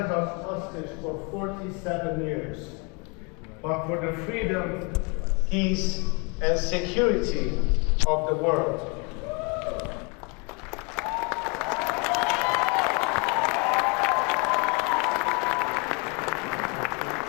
us hostage for 47 years, but for the freedom, peace, and security of the world.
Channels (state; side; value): quieter; right; 32.0 dB